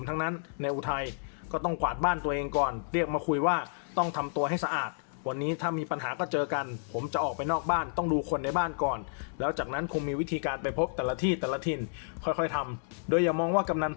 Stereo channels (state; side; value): silent; right; 57 dB below the other